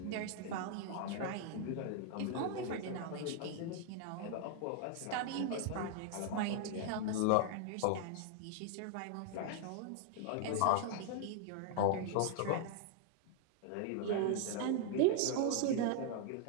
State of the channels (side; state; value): both; different; correlation 0.00